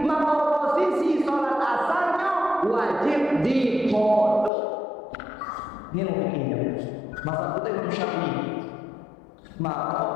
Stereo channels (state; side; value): drops out; right; at 4.5 s